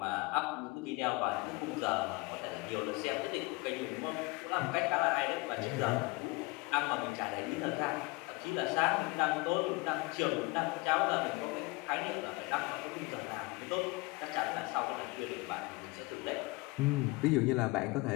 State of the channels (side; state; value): right; quieter; 24.3 dB